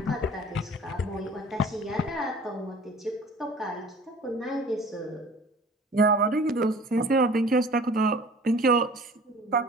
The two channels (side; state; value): both; normal; correlation 0.46